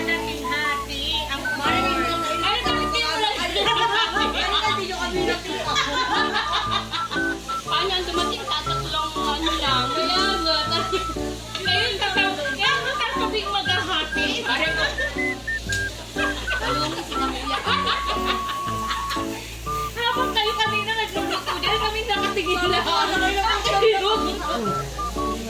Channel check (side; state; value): both; identical; correlation 1.00